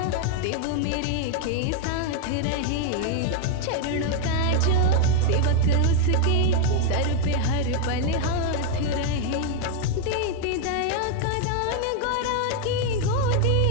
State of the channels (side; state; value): both; different; correlation 0.01